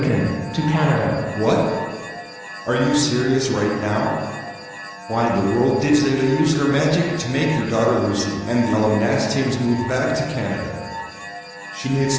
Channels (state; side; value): identical; both; correlation 1.00